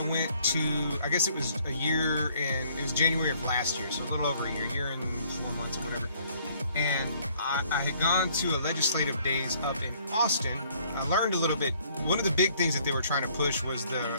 went to, I guess it was it was January of last year, so a little over a year and 4 months or whatever. And I had gone to a legislative days up in Austin. I learned a little bit. One of the big things that they were trying to push was the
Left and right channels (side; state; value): both; inverted; correlation -0.62